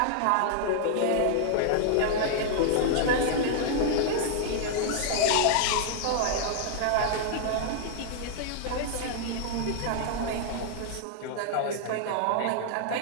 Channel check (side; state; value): both; different; correlation -0.01